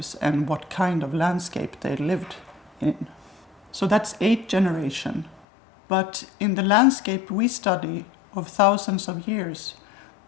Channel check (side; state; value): right; drops out; at 5.4 s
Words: and what kind of landscape they lived in. So that's 8 generations. But in the landscape we study of thousands of years,